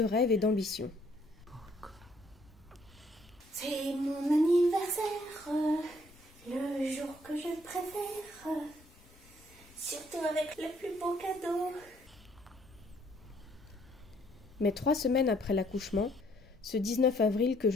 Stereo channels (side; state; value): left; noise; rumble, 25 dB below the sound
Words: rêves et d'ambition. C'est mon anniversaire, le jour que je préfère, surtout avec le plus beau cadeau. Mais 3 semaines après l'accouchement, ce 19 avril que